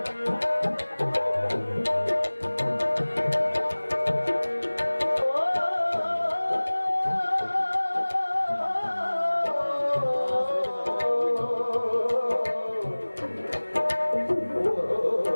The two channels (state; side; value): inverted; both; correlation -1.00